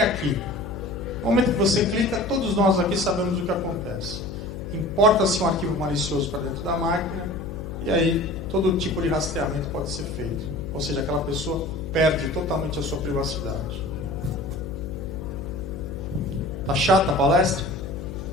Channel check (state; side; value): noise; left; hum, 8 dB below the sound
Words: No momento que você clica, todos nós aqui sabemos o que acontece. Importa-se um arquivo malicioso para dentro da máquina, e aí todo tipo de rastreamento pode ser feito. Ou seja, aquela pessoa perde totalmente a sua privacidade. Tá chata a palestra?